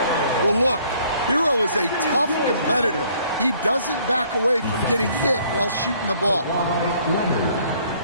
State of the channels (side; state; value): both; inverted; correlation -0.61